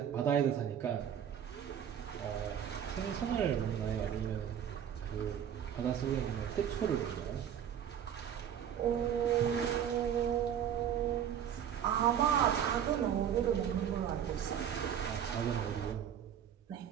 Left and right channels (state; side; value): quieter; left; 9.1 dB